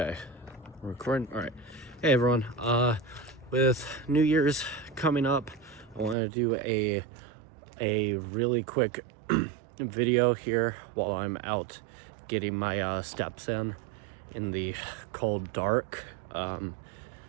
recording. All right. Hey everyone. With New Year's coming up, I want to do a really quick video here while I'm out getting my steps in the cold dark.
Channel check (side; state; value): left; drops out; at 6.2 s